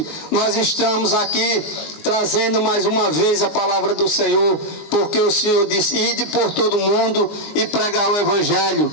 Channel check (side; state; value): right; late; 20 ms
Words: nós estamos aqui trazendo mais uma vez a palavra do Senhor, porque o Senhor disse: ide por todo mundo e pregar o Evangelho.